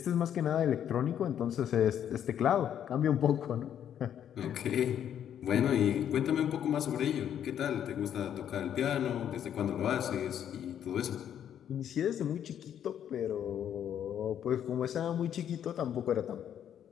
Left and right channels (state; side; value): quieter; right; 9.7 dB